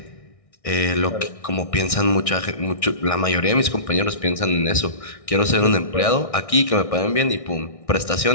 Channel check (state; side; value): late; right; 1.6 ms